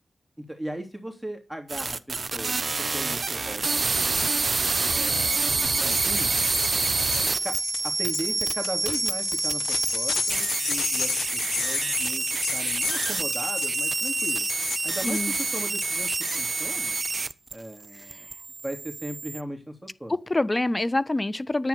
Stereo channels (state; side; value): normal; both; correlation 0.92